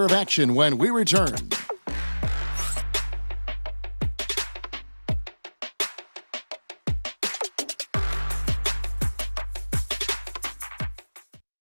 of action when we return.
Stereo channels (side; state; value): both; inverted; correlation -1.00